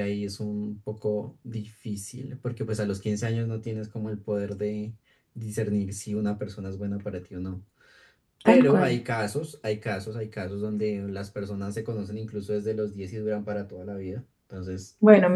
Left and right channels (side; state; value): both; identical; correlation 1.00